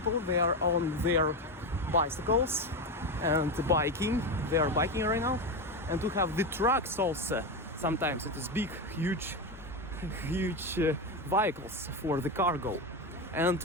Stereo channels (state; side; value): normal; both; correlation 0.15